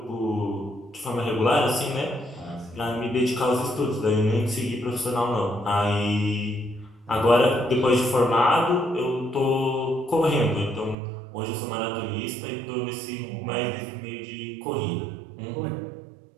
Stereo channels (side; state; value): left; drops out; at 11.0 s